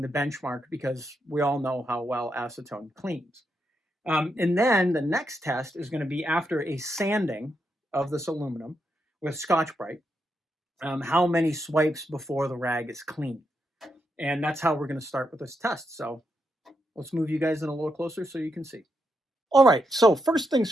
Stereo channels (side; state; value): both; normal; correlation 0.83